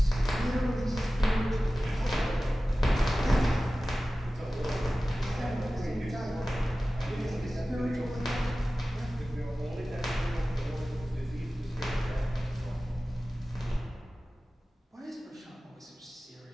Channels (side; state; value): both; normal; correlation 0.96